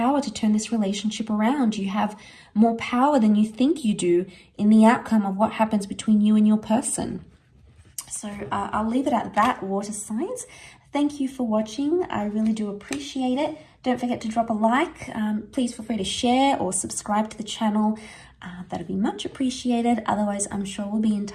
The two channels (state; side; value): identical; both; correlation 1.00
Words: to turn this relationship around. You have more power than you think you do in the outcome of what happens between you and your person. So I'll leave it at that, water signs. Thank you for watching. I really do appreciate it. Don't forget to drop a like. Please feel free to share or subscribe to the channel. That'd be much appreciated. Otherwise, I'm sure we'll be in